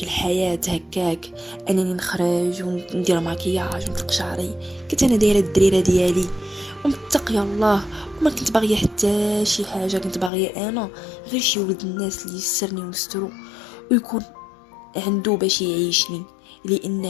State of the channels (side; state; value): right; drops out; at 10.3 s